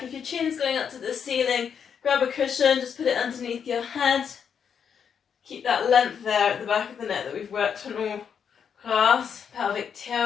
If your chin's going up to the ceiling, grab a cushion, just put it underneath your head. Keep that length there at the back of the neck that we've worked on all class. Pelvic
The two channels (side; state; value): right; quieter; 7.3 dB